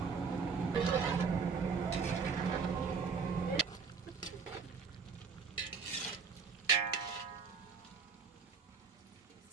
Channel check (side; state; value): left; quieter; 5.4 dB